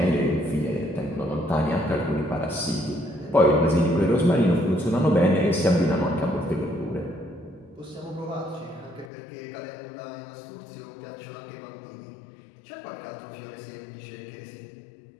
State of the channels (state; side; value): drops out; right; at 9.1 s